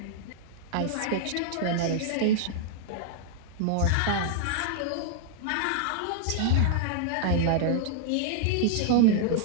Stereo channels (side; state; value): both; different; correlation -0.01